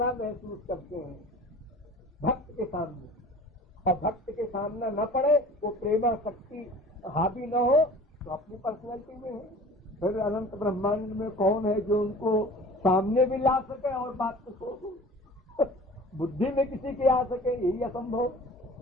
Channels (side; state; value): both; normal; correlation 0.43